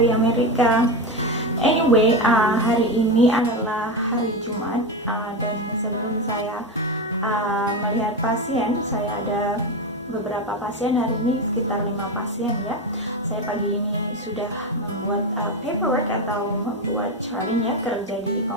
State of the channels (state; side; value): normal; both; correlation 0.16